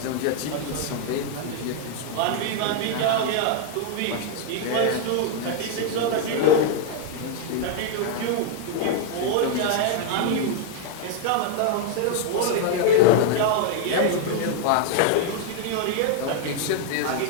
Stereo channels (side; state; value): both; different; correlation 0.00